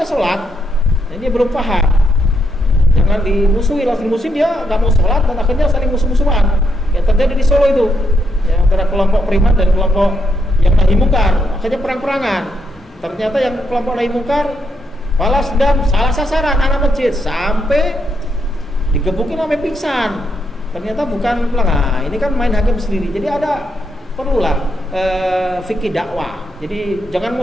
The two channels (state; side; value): normal; both; correlation 0.78